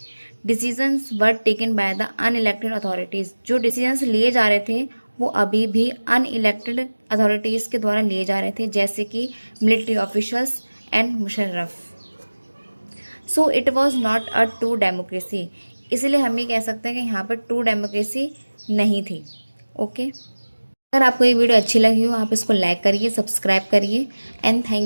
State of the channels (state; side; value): inverted; both; correlation -1.00